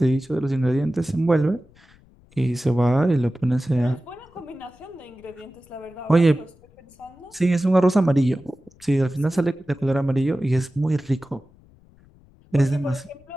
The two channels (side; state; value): left; noise; rumble, 28 dB below the sound